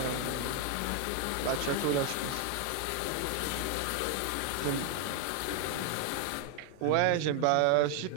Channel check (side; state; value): both; different; correlation 0.00